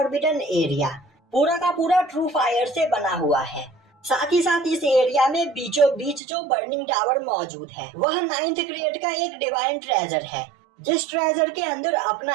एरिया पूरा का पूरा ट्रू फायर से बना हुआ है। साथ ही साथ इस एरिया में बीचों बीच जो बर्निंग टावर मौजूद है वह 9th ग्रेड का एक डिवाइन ट्रेजर है, जिस ट्रेजर के अंदर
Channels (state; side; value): drops out; left; at 6.2 s